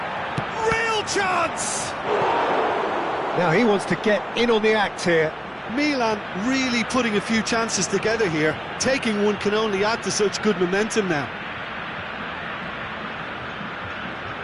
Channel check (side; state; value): both; identical; correlation 1.00